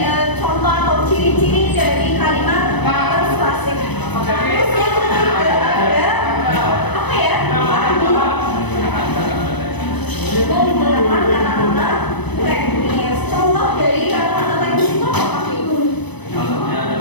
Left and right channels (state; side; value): late; right; 1.0 ms